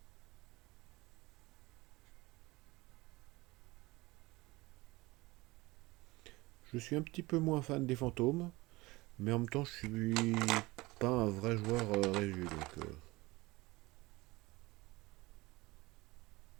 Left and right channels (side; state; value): left; quieter; 21.4 dB